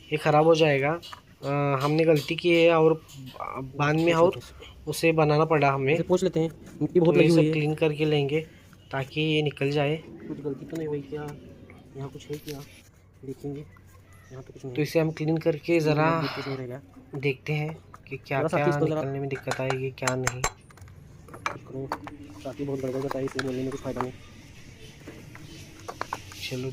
ख़राब हो जाएगा। हमने गलती की है, और बाद में और उसे बनाना पड़ा हमें। पूछ लेते हैं, मिट्टी बहुत लगी हुई है, है, क्लीन करके लेंगे ताकि ये निकल जाए। कुछ गलती तो नहीं हुई क्या, यहाँ कुछ है क्या, देखेंगे। यहाँ तो कुछ नहीं, तो इसे हम क्लीन करके ज़रा देखते हैं कि क्या क्या निकलने में दिक्कत आएगी, क्या नहीं। साथी बहुत गड़बड़ बताई, इसलिए बोलने में कुछ फ़ायदा नहीं। चलो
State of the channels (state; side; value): identical; both; correlation 1.00